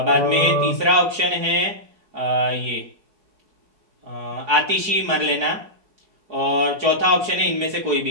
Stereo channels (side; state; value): left; late; 4.7 ms